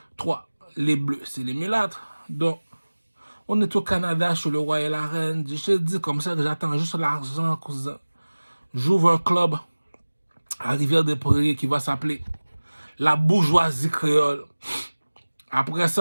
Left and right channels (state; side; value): inverted; both; correlation -1.00